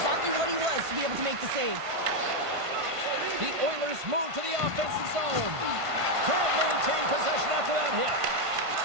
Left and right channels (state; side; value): late; left; 1.5 ms